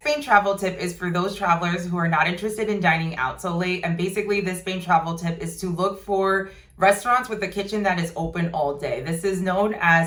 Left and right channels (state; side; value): identical; both; correlation 1.00